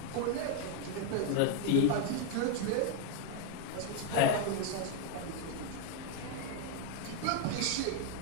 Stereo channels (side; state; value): both; different; correlation 0.01